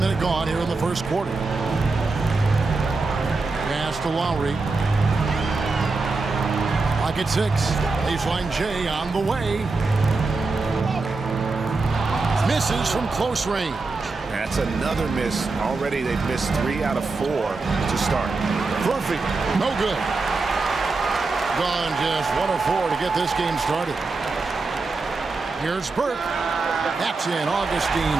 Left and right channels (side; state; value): left; quieter; 3.8 dB